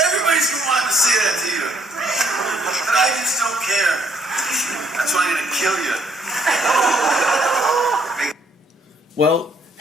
Everybody's been wanting to say that to you. But I just don't care. That's why I'm going to kill you. Well,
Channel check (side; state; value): both; normal; correlation 0.67